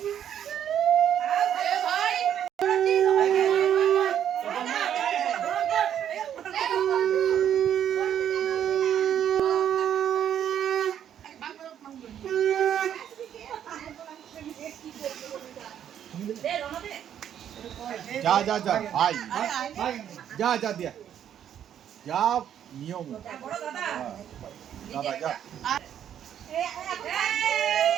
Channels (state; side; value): quieter; left; 9.8 dB